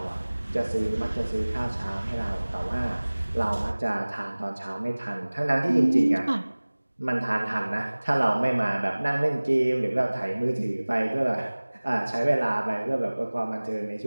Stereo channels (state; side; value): inverted; both; correlation -1.00